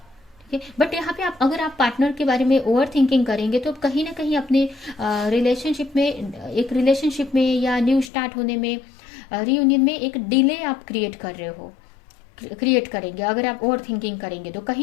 ठीक है, बट यहाँ पे आप अगर आप पार्टनर के बारे में ओवर थिंकिंग करेंगे तो कहीं ना कहीं अपने रिलेशनशिप में, एक रिलेशनशिप में या न्यू स्टार्ट होने में, रियूनियन में एक डिले आप क्रिएट करेंगे। अगर आप ओवर थिंकिंग करेंगे तो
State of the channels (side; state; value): right; drops out; at 8.1 s